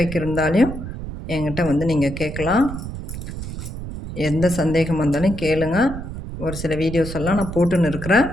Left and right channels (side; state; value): right; noise; rumble, 8 dB below the sound